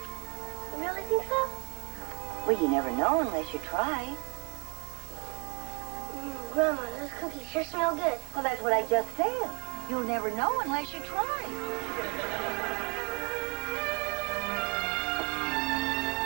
You really think so? Well, you never know unless you try. Grandma, those cookies sure smell good. Well, that's what I just said. You'll never know unless you try.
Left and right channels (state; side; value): quieter; left; 29.1 dB